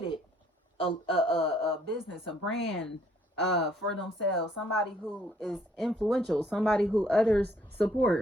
a business, a brand for themselves, somebody who is influential, somebody who others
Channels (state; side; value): normal; both; correlation 0.65